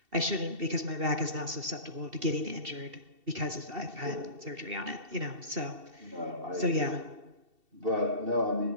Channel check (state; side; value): late; left; 2.7 ms